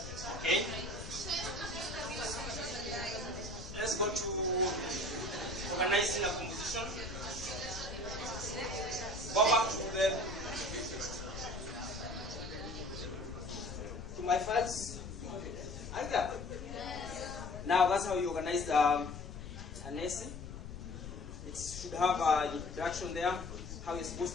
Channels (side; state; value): left; noise; rumble, 10 dB below the sound